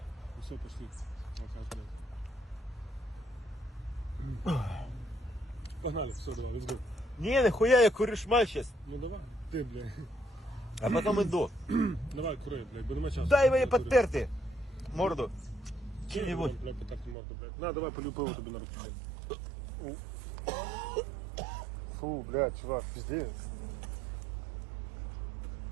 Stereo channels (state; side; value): drops out; left; at 17.2 s